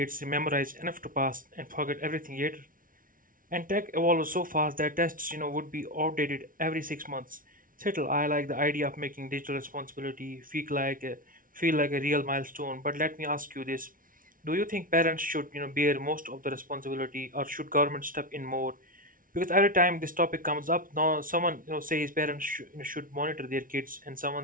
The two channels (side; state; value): left; late; 0.40 ms